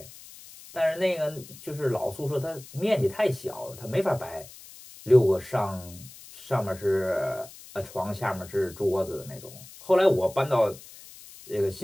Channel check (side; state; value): left; noise; hiss, 18 dB below the sound